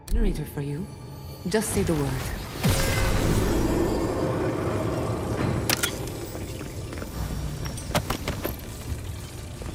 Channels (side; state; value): both; identical; correlation 1.00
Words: generator for you. Just say the word.